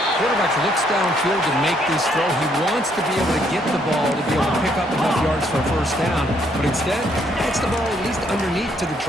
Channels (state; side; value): normal; both; correlation 0.70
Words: Quarterback looks downfield to make this throw. He wants to be able to get the ball to be able to pick up enough yards for a first down, but instead gets the ball at least underneath to the